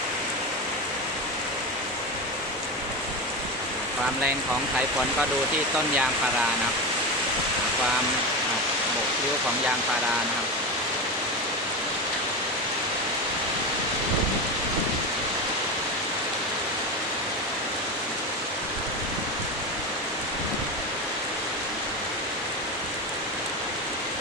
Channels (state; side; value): normal; both; correlation 0.20